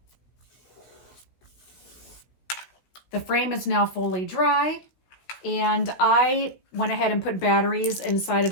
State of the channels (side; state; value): right; late; 16 ms